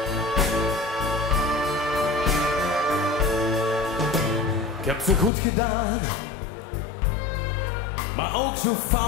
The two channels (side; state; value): right; drops out; at 5.3 s